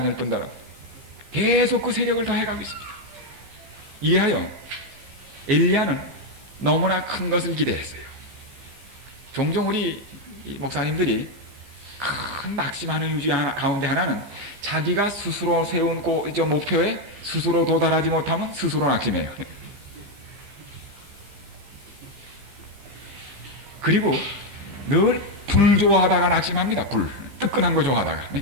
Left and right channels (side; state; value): left; late; 15 ms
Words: 뿐더러 계속 그 세력을 더해가고 있습니다. 이하여 엘리야는 너무나 큰 것을 기대했어요. 종종 우리 목사님들이 큰 낙심하는 유지 가운데 하나는 자기가 스스로 세운 목표에 스스로 도달하지 못하면 스스로 낙심해요. 그리고 늘 불 좋아하다가 낙심합니다. 불 뜨끈한 거 좋아하다가